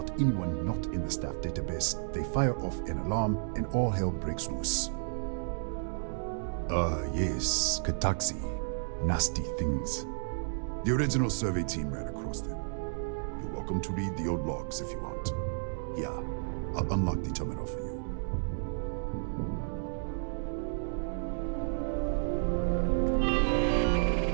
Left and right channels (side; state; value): left; silent; digital silence